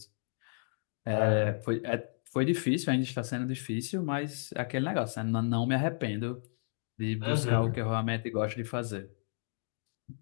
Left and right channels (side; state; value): right; silent; digital silence